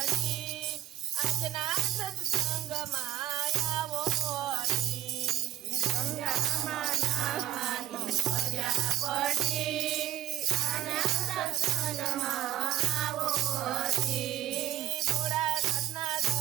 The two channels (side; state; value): left; quieter; 13.4 dB